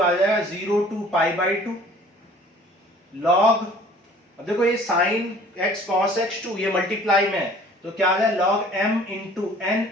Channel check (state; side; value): normal; both; correlation 0.51